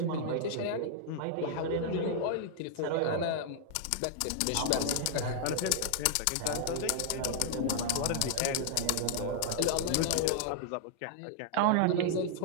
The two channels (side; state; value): both; different; correlation -0.01